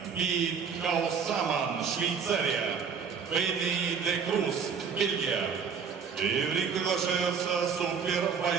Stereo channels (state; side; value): quieter; left; 6.3 dB